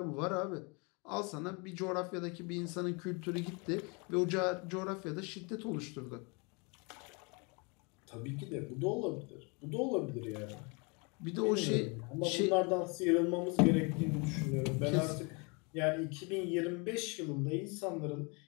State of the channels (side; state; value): right; quieter; 31.4 dB